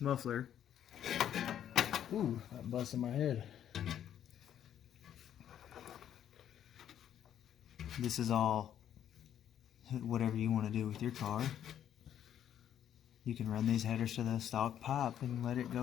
Ooh, that busted my head. This is all whatever you want to do with your car. You can run these headers to the stock pipe and let it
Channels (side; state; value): right; quieter; 10.2 dB